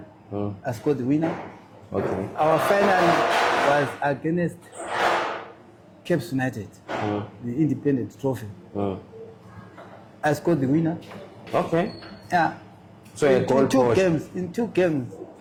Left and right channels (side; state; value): both; identical; correlation 1.00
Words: I scored the winner. Okay. Our final was against Caps United, the independent trophy. I scored the winner. Okay. Yeah. So in two games,